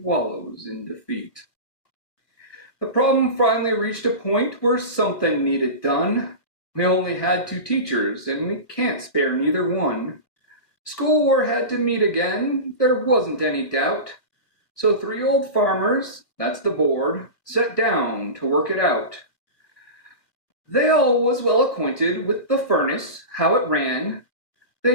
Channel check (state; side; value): late; right; 2.2 ms